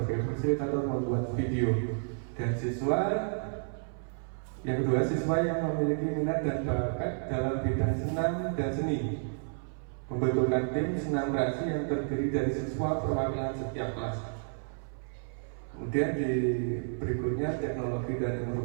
fasilitator membuat video, dan siswa yang kedua siswa yang memiliki minat dan bakat dalam bidang senam dan seni, membentukkan tim senam kreasi yang terdiri dari siswa perwakilan setiap kelas. Kemudian di berikutnya teknologi dan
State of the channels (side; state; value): left; silent; 56 dB below the other